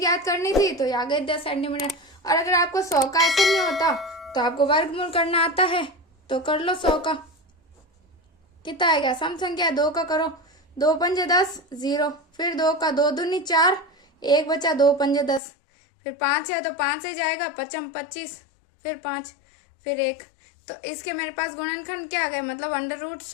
करनी थी तो आ गए 10 सेंटीमीटर। और अगर आपको 100 का ऐसे नहीं होता तो आपको वर्गमूल करना आता है, तो कर लो 100 का। कितना आएगा, सम संख्या 2 का करो, 2 पंजे 10 0, फिर 2 का 2 दूनी 4, 1 बचा, 2 पंजे 10, फिर 5 है तो 5 से जाएगा, 5 25, फिर 5, फिर 1। तो इसके मेरे पास गुणनखंड क्या आ गए, मतलब अंडर रूट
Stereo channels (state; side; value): drops out; right; at 15.4 s